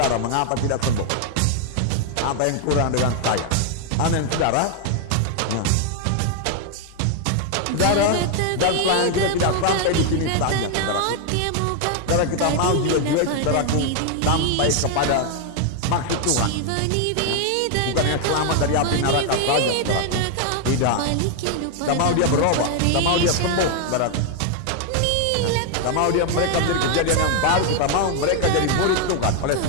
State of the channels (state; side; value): different; both; correlation 0.00